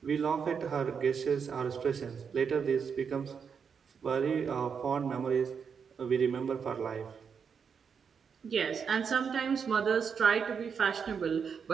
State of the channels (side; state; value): left; quieter; 6.5 dB